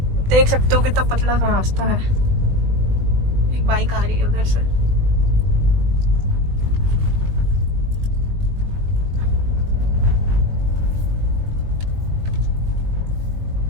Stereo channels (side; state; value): left; late; 20 ms